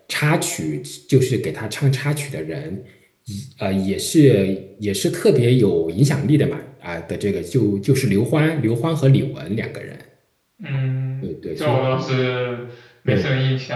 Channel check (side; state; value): both; identical; correlation 1.00